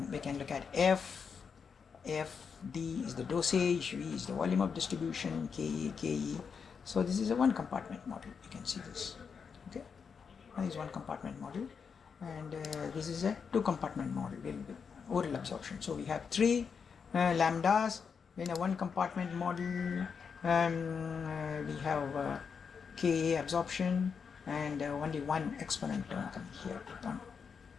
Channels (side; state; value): right; quieter; 6.1 dB